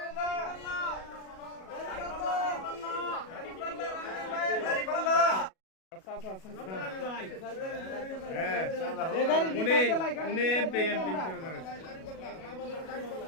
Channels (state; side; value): late; right; 37 ms